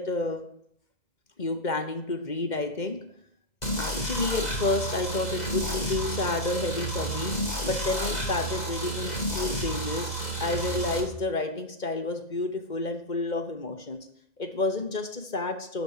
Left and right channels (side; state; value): right; late; 2.0 ms